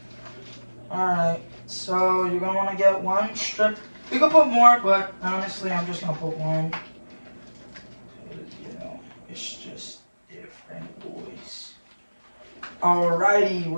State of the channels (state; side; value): inverted; both; correlation -1.00